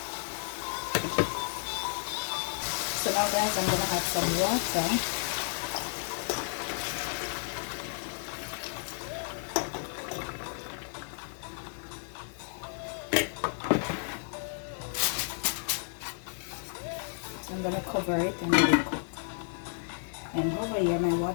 So now guys, I'm gonna add some water. I'm gonna cover it and let it cook. And over here my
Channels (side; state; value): right; silent; digital silence